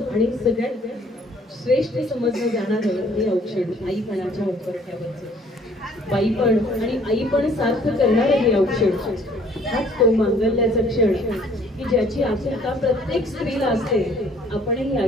आणि सगळ्यात श्रेष्ठ समजलं जाणारं हे औक्षण आईपणाच्या उंबरठ्यावरचं. बाईपण आणि आईपण सार्थ करणारं हे औक्षण, हाच तो मांगल्याचा क्षण की ज्याची आतुरता प्रत्येक स्त्रीला असते. आपणही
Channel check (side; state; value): both; normal; correlation 0.58